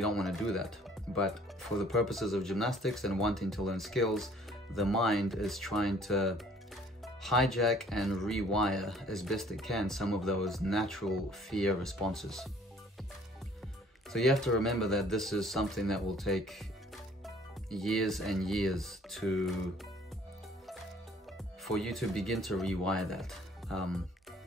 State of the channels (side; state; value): both; normal; correlation 0.56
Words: do that. But for the purposes of gymnastics and wanting to learn skills, the mind is trying to hijack and rewire as best it can some of those natural fear responses. So you have to remember that this is something that will take years and years for you to begin to rewire that.